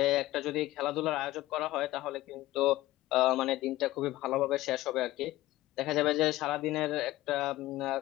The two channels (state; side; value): quieter; right; 16.8 dB